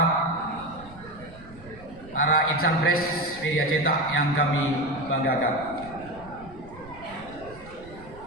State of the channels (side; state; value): right; noise; rumble, 19 dB below the sound